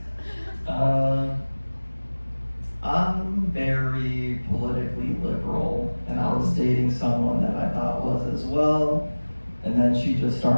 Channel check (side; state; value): both; inverted; correlation -1.00